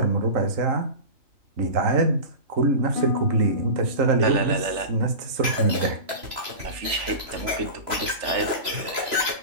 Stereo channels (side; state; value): left; late; 3.0 ms